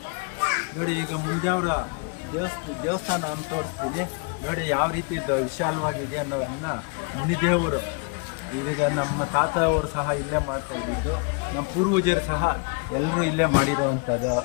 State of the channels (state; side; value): quieter; right; 34.9 dB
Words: ನೋಡಿ, ಈಗ ಮುಂಜಾವರ ದೇವಸ್ಥಾನ ಅಂತ ತೋರಿಸ್ತೀನಿ. ನೋಡಿ, ಯಾವ ರೀತಿ ವಿಶಾಲವಾಗಿದೆ ಅನ್ನೋದನ್ನ ಮುನಿದೇವರು, ಈಗ ನಮ್ಮ ತಾತ ಅವರು ಸಹ ಇಲ್ಲೇ ಮಾಡ್ತಾ ಇದ್ದಿದ್ದು. ನಮ್ಮ ಪೂರ್ವಜರು ಸಹ ಎಲ್ಲರೂ ಇಲ್ಲೇ ಮಾಡಿರೋವಂಥದ್ದು